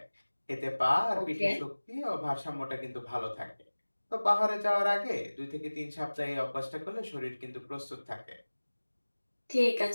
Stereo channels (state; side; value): inverted; both; correlation -1.00